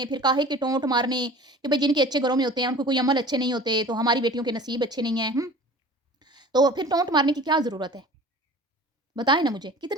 फिर काहे के टोंट मारने कि भई जिनके अच्छे घरों में होते हैं, उनको कोई अमल अच्छे नहीं होते, तो हमारी बेटियों के नसीब अच्छे नहीं हैं, हुँ? तो फिर टोंट मारने की क्या ज़रूरत है? बताएँ ना मुझे,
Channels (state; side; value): normal; both; correlation 0.42